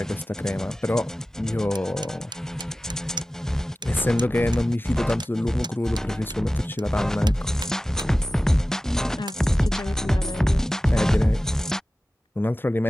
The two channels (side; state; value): both; normal; correlation 0.96